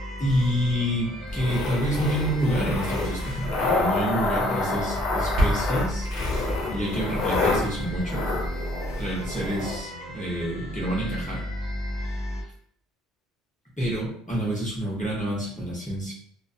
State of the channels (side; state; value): both; normal; correlation 0.63